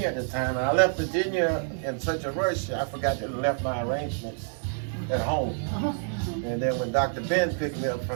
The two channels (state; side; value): silent; left; digital silence